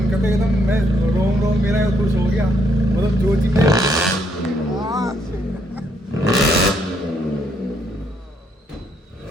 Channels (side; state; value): both; normal; correlation 0.73